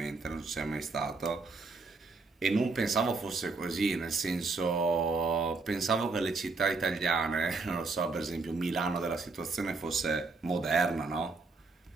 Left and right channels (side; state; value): left; quieter; 4.0 dB